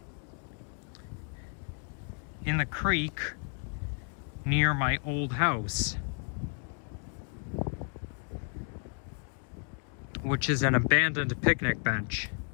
in the creek near my old house, which is an abandoned picnic bench.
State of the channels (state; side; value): quieter; right; 38.7 dB